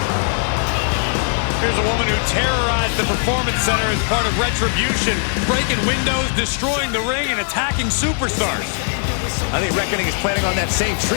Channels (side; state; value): right; silent; 58 dB below the other